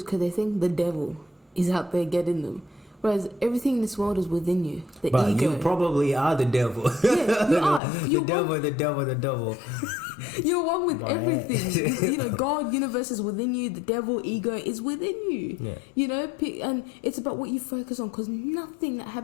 because they think the devil is out there getting them, whereas everything in this world is within you. But ego. you probably are the devil. Yeah, you are. The devil. You're one with everything. God, universe is within you. The devil, ego is within you. Yeah. And it's about what you focus on, because nothing that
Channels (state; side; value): drops out; right; at 7.8 s